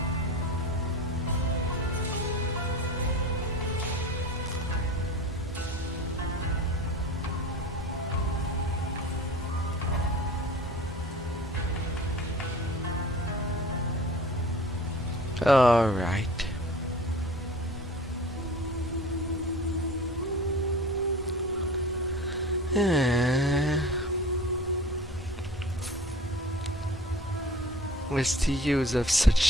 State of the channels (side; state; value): both; normal; correlation 0.40